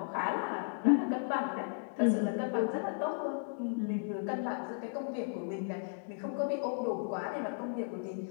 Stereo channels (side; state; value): right; silent; digital silence